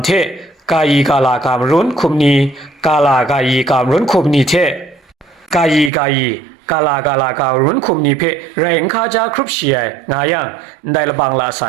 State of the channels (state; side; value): drops out; left; at 5.9 s